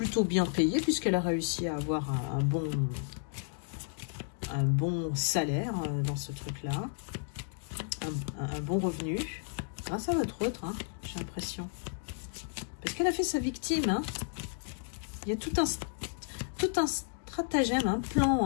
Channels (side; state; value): right; silent; digital silence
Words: bien payée, puisqu'elle a réussi à avoir un bon salaire dans ce truc-là, un bon revenu, grâce à votre autre, hein, j'ai l'impression. Parce qu'elle a fait sa victime, hein. Il y a tout un stratagème, un